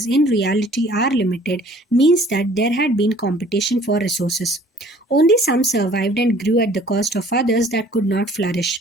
in reality are limited means that there had been competition for resources. Only some survived and grew at the cost of others that could not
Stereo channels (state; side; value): normal; both; correlation 0.54